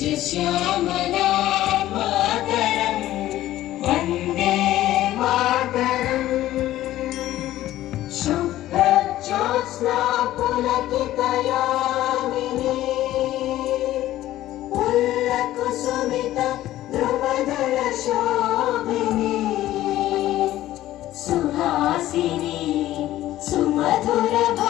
श्यामला मातरं वन्दे मातरम् शुभ्रज्योत्स्ना पुलकितयामिनी पुल्लकुसुमित ध्रुवदल शोभिनी सुहासिनी सुमधुर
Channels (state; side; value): quieter; right; 14.4 dB